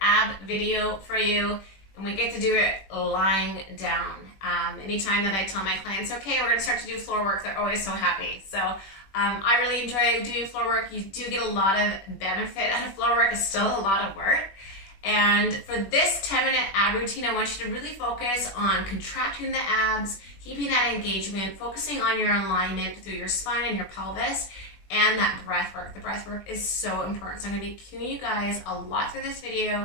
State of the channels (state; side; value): late; right; 21 ms